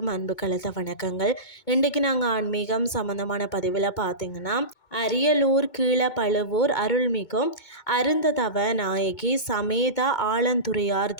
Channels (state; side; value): late; right; 2.2 ms